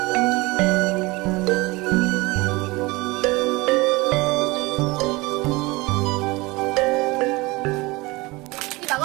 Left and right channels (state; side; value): quieter; left; 23.1 dB